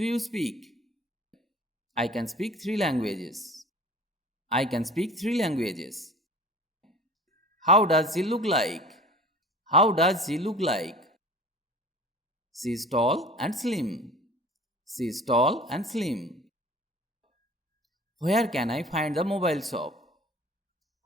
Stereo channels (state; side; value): normal; both; correlation 0.43